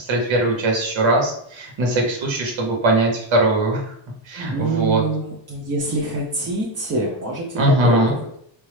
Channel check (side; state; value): both; normal; correlation 0.08